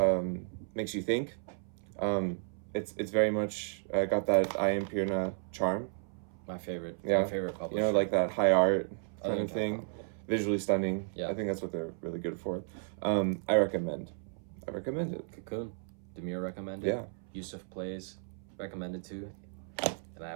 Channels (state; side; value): silent; left; 55 dB below the other